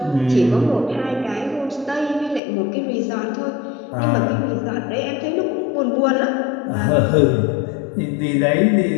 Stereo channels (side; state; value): right; drops out; at 2.4 s